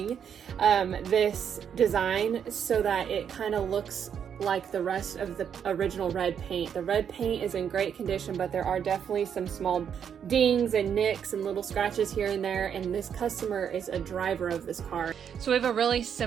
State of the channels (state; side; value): quieter; left; 8.1 dB